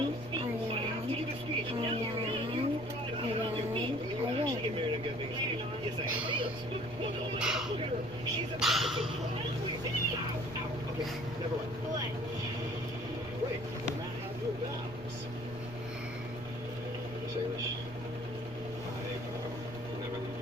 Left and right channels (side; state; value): right; noise; rumble, 16 dB below the sound